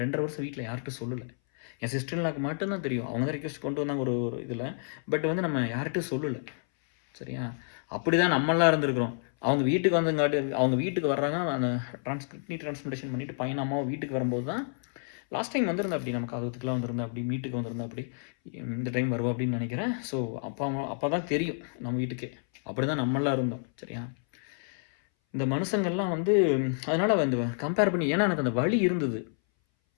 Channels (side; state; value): right; silent; 58 dB below the other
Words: 2 1/2 வருஷம் வீட்டில் யார்கிட்டும் சொல்லல. என் சிஸ்டர் இன் லாக்கு மட்டும் தான் தெரியும். அவங்க தான் ரிக்வெஸ்ட் கொண்டு வந்தாங்க ஒரு ஒரு இதில. பட் வந்து நம்ம யார்கிட்டயும் சொல்லல. சரியா? அப்படி தான் நம்மலாம் இருந்திருக்கிறோம். அவங்க வீட்டுக்கு வந்தங்காட்டி அவங்க வீட்டுக்கு வர்றாங்க. அந்த கிட்னி டிரான்ஸ்பிளான்டேஷன் பண்ணிட்டு பையனும் அம்மாவும் வீட்டுக்கு வரும்போது தான் லாஸ்ட் டைம் வந்திருந்தா அப்படி நம்ம காதுகுத்துக்குலாம் வந்திருந்தா அப்படி வீட்டுக்கு வந்திருந்தா அப்படி இந்த டைம் வருவா அப்படின்னு நினைக்கிறேன். ஸோ அப்போ தான் தெரியும் நம்ம வீட்டுக்கே. அப்படி தான் நம்மலாம் இருந்தோம். சரியா? இந்த மனுஷங்கள்லாம் வந்து அதனால வந்து கம்பேர் பண்ணி ஏன்னா எனக்கு அந்த வலி இருந்தது.